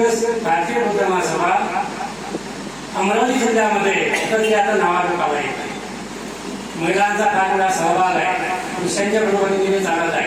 भारतीय बौद्ध महासभा अमरावती जिल्ह्यामध्ये तर ते आता नावारूप आला आहे. महिलांचा फार मोठा सहभाग आहे, पुरुषांच्या बरोबरीने चालत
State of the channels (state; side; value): noise; right; hum, 25 dB below the sound